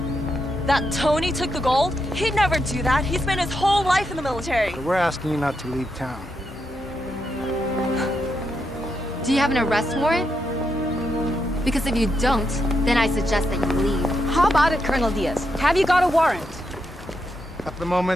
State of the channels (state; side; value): normal; both; correlation 0.82